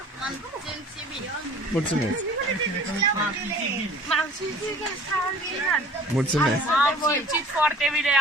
M-am simțit bine. Mulțumesc. M-am simțit extraordinar. Mulțumesc. M-am simțit foarte bine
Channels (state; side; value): normal; both; correlation 0.49